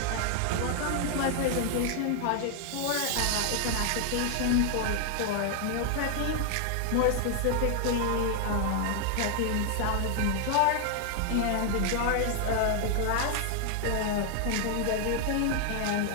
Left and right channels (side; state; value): both; different; correlation 0.00